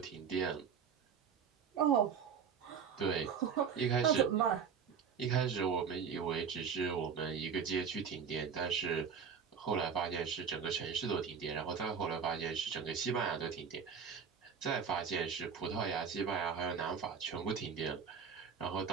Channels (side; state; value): left; quieter; 6.8 dB